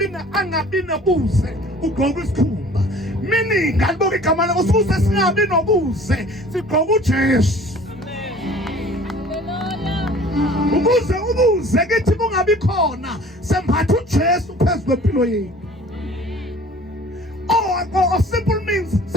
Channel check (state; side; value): normal; both; correlation 0.49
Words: nobuze ugqoka isikhumba. Meaning ngaliboka igama lakho ukuze singabi nobuze sigqoka uJesu. Ukuze ubuze kithi kungabi khona sembatha uJesu phezulu kwempilo yethu. Or simple means